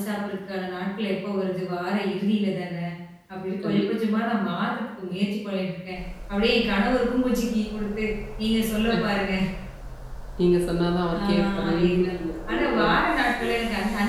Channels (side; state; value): both; identical; correlation 1.00